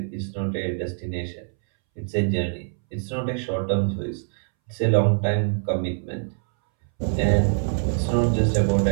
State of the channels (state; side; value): silent; left; 62 dB below the other